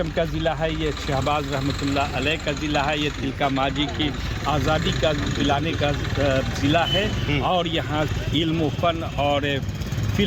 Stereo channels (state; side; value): identical; both; correlation 1.00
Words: का ज़िला है, ये शहबाज रहमतुल्लाह अलैह का ज़िला है, ये तिलका माजी की आज़ादी का दिलाने का ज़िला है। और यहाँ इल्म फ़न और